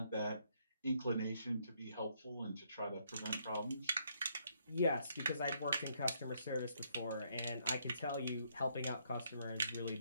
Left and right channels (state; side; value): inverted; both; correlation -0.72